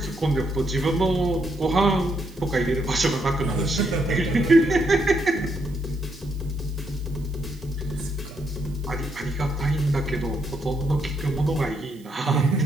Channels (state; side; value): noise; right; hiss, 26 dB below the sound